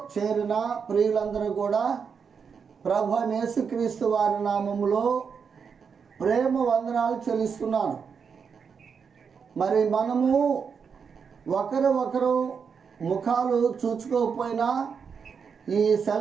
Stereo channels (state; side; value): quieter; left; 6.2 dB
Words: చేరిన ప్రియులందరూ కూడా ప్రభు యేసుక్రీస్తు వారి నామములో ప్రేమ వందనాలు చెల్లిస్తున్నాను. మరి మనము ఒకరు ముఖాలు చూచుకోకపోయినా ఈ